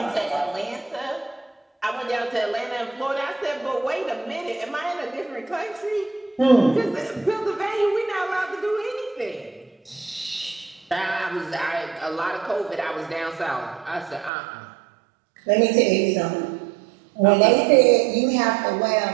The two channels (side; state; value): left; drops out; at 14.3 s